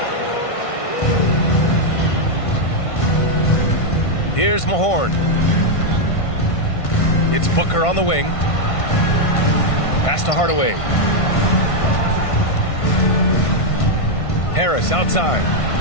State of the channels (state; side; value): late; right; 1.5 ms